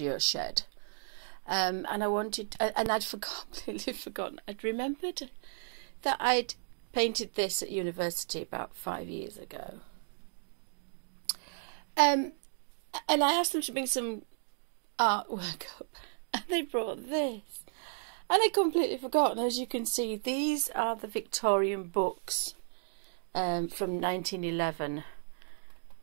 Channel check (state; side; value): silent; left; digital silence